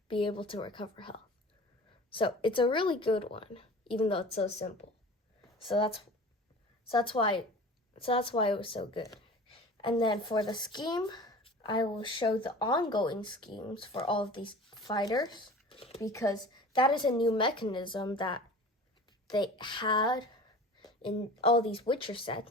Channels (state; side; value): normal; both; correlation 0.40